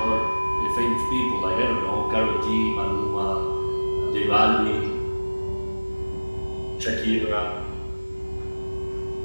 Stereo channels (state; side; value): inverted; both; correlation -1.00